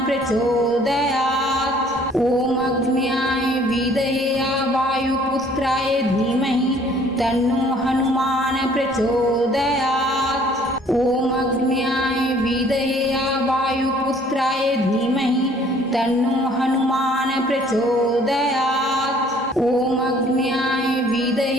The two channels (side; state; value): both; normal; correlation 0.57